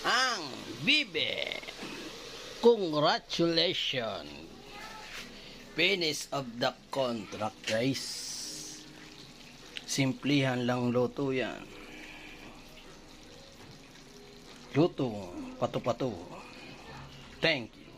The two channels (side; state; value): both; identical; correlation 1.00